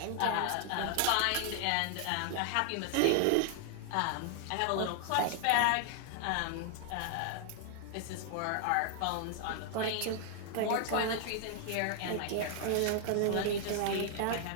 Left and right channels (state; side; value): different; both; correlation 0.00